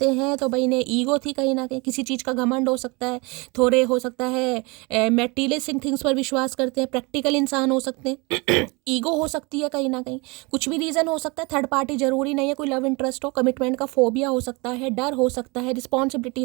हैं। तो भाई इन्हें ईगो थी कहीं ना कहीं, किसी चीज़ का घमंड हो सकता है, थोड़े हो सकता है मेटीरियलिस्टिक थिंग्स पर विश्वास करते हैं, प्रैक्टिकल इंसान हो सकते हैं। ईगो हो सकती है कहीं ना कहीं, कुछ भी रीज़न हो सकता है। थर्ड पार्टी जरूरी नहीं है कोई लव इंटरेस्ट हो, कमिटमेंट का फोबिया हो सकता है, डर हो सकता है, रिस्पॉन्सिबिलिटी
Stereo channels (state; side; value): quieter; left; 27.4 dB